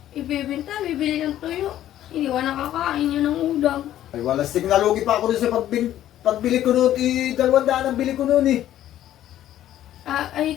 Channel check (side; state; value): right; quieter; 12.4 dB